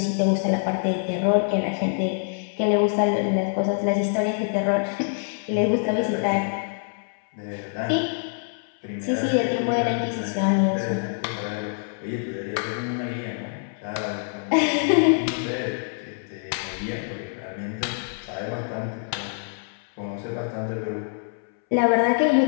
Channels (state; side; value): silent; right; 62 dB below the other